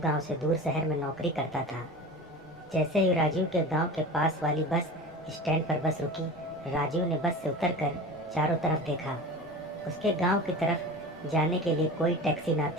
से दूर शहर में नौकरी करता था। जैसे ही राजीव के गांव के पास वाली बस स्टैंड पर बस रुकी, राजीव ने बस से उतरकर चारों तरफ देखा। उसके गांव की तरफ जाने के लिए कोई टैक्सी ना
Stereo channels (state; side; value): noise; left; rumble, 27 dB below the sound